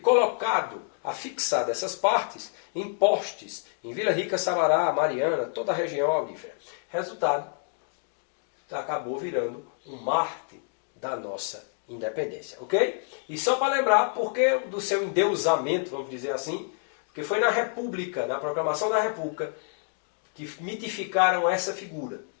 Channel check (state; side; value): silent; right; 59 dB below the other